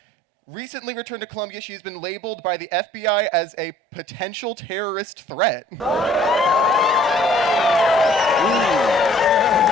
Recently returned to Columbia, she has been labeled by the FBI as a potential terrorist threat.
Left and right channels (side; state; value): both; normal; correlation 0.56